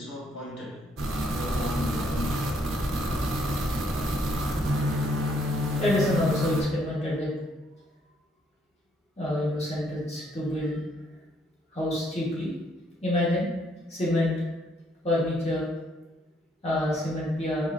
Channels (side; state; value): both; normal; correlation 0.70